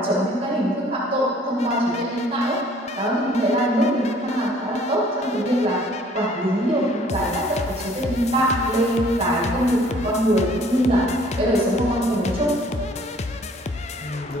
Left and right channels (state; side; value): normal; both; correlation 0.56